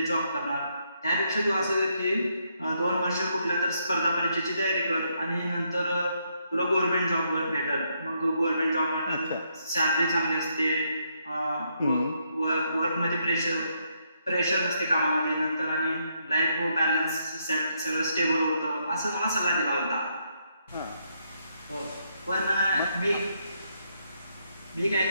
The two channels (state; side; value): inverted; both; correlation -0.76